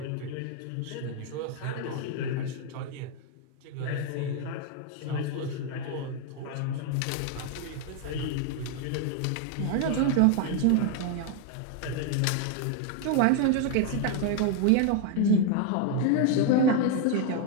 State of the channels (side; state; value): both; different; correlation 0.01